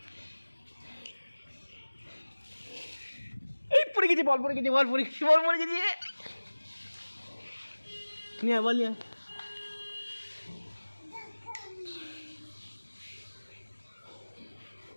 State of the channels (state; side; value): inverted; both; correlation -1.00